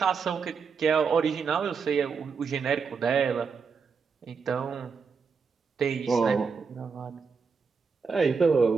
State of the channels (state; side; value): quieter; left; 5.5 dB